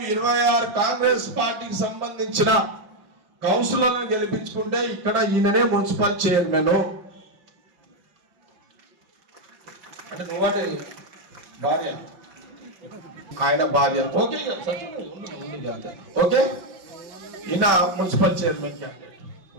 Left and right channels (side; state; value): left; late; 5.6 ms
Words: 26 కాంగ్రెస్ పార్టీకి సంబంధించిన కౌన్సిలర్లను గెలిపించుకుంటే ఇక్కడ ఈయననే మున్సిపల్ చైర్మన్. అంటే నువ్వాటి భార్య, ఆయన భార్య, ఓకే ఓకే. ఈయన municipal chairman candidate.